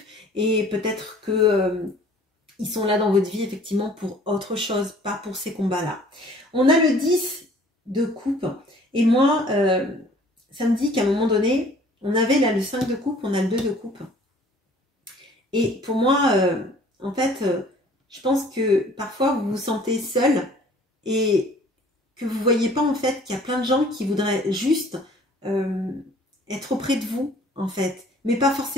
et peut-être que ils sont là dans votre vie effectivement pour autre chose, pas pour ces combats-là. On a le 10 de coupe et moi, ça me dit qu'à un moment donné, on avait là le 5 de coupe, on a le 2 de coupe. Et pour moi, en fait, je pense que parfois vous vous sentez seul et que vous ne voyez pas en fait qu'il y a plein de gens qui voudraient juste être auprès de vous en fait, mais pas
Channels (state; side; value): normal; both; correlation 0.53